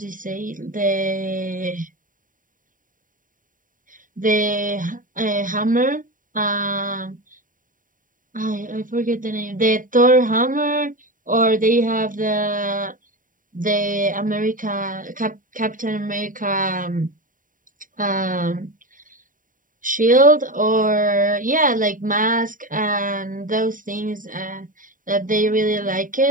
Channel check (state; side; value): late; left; 0.39 ms